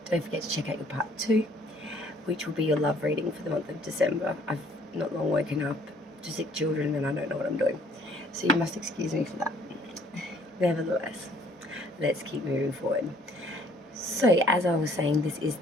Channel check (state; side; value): normal; both; correlation 0.60